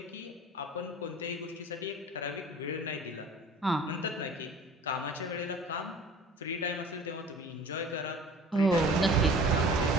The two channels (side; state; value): both; normal; correlation 0.44